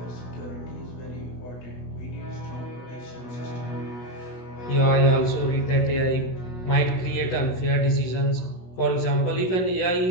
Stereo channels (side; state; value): right; late; 16 ms